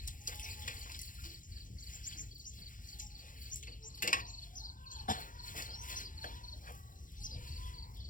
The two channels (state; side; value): late; right; 0.39 ms